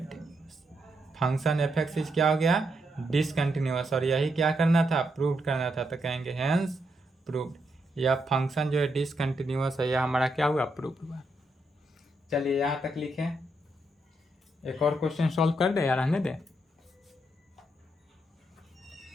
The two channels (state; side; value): normal; both; correlation 0.80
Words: Function f x is क्या हो गया, डिसकंटिन्यूअस, और यही क्या करना था, प्रूव करना था, तो कहेंगे हेंस प्रूव्ड। यह फंक्शन जो है डिसकंटिन्यूअस है, यह हमारा क्या हुआ, प्रूव हुआ। चलिए यहाँ तक लिखें, एक और क्वेश्चन सॉल्व कर दे या रहने दे।